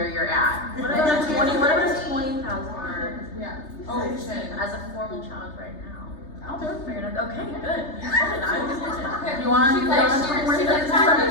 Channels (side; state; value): right; late; 3.3 ms